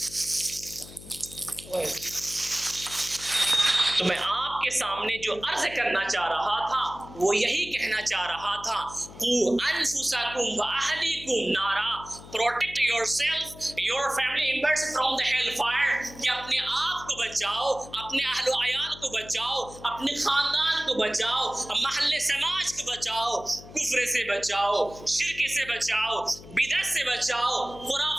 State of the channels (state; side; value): noise; left; hum, 17 dB below the sound